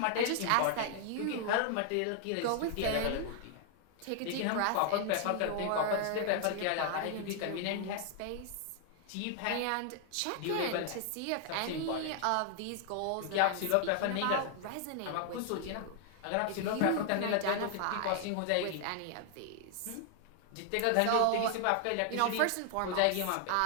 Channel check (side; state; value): both; different; correlation 0.00